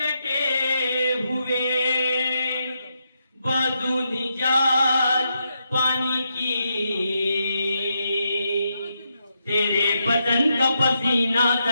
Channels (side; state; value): both; inverted; correlation -0.82